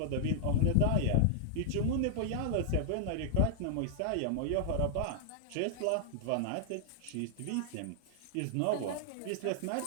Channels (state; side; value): different; both; correlation -0.01